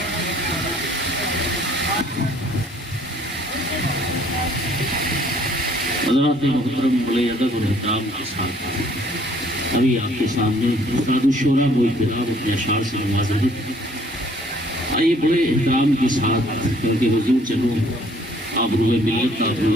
حضرات محترم بڑے ادب اور احترام کے ساتھ ابھی آپ کے سامنے افراد الشورا وہ احترام اپنے اشعار سے نوازا ہے آئیے بڑے احترام کے ساتھ کیونکہ حضور چلو آبروئے ملت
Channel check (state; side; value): normal; both; correlation 0.60